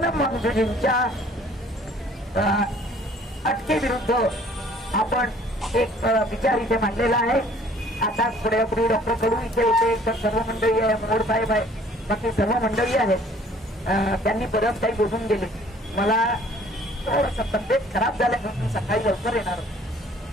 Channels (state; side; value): normal; both; correlation 0.56